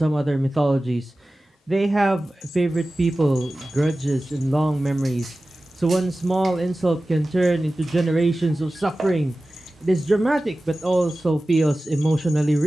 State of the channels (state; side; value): normal; both; correlation 0.96